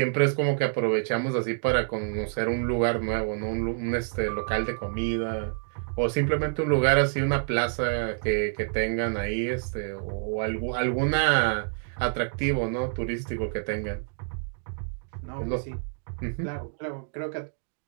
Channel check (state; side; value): silent; left; digital silence